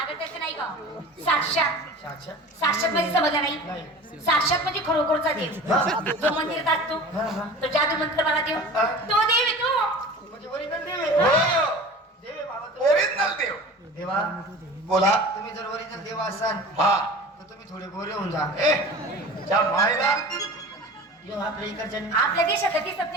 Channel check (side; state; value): both; normal; correlation 0.38